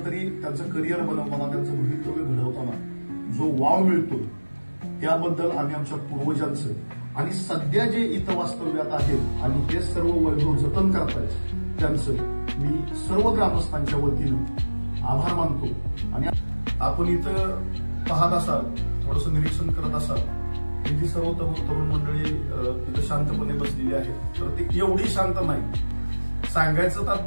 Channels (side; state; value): both; inverted; correlation -1.00